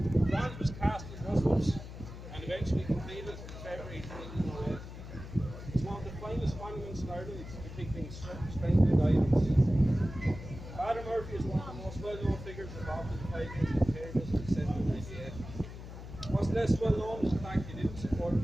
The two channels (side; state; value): left; noise; hum, 12 dB below the sound